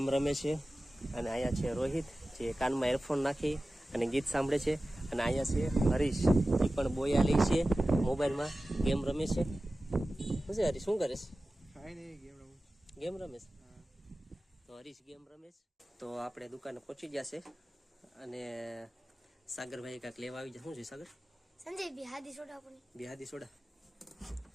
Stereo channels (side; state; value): both; normal; correlation 0.96